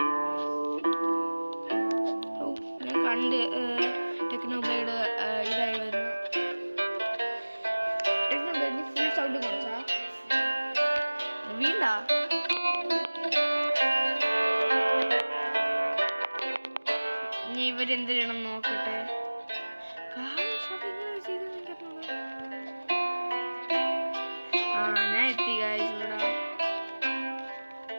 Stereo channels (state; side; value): inverted; both; correlation -1.00